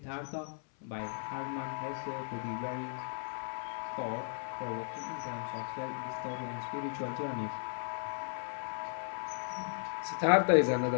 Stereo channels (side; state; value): right; silent; 54 dB below the other